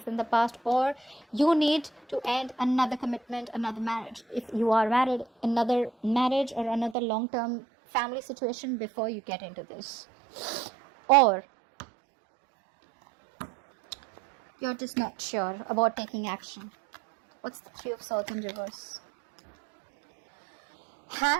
in the past, or you need to end another commitment, another marriage. If you are married, another marriage or another long-term family situation before you get into this. Or you're just not sure about taking action. What's the Three of Swords in reverse?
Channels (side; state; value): left; drops out; at 7.0 s